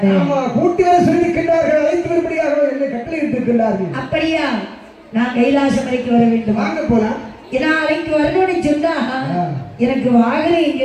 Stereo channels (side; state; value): both; identical; correlation 1.00